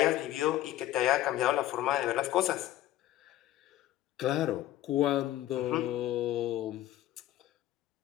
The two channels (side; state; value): right; quieter; 13.9 dB